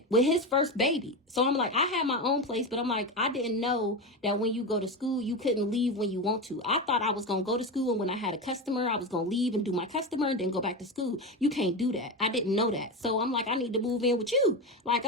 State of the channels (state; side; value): normal; both; correlation 0.18